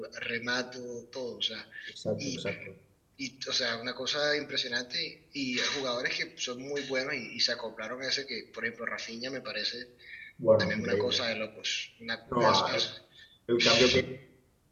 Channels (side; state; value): both; identical; correlation 1.00